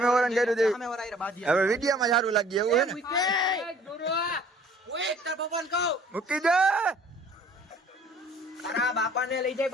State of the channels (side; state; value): both; normal; correlation 0.54